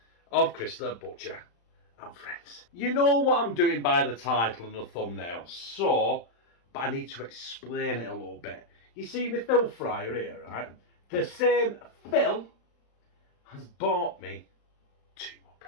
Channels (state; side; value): late; right; 35 ms